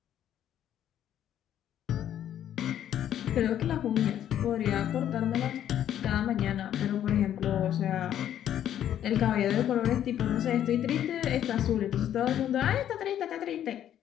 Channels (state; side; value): quieter; right; 10.7 dB